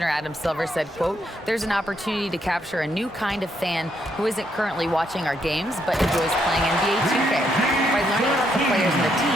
Adam Silver said, quote, "There's an opportunity to capture a new kind of fan who isn't currently watching our games but enjoys playing NBA 2K. By learning about the players and the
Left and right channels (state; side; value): normal; both; correlation 0.76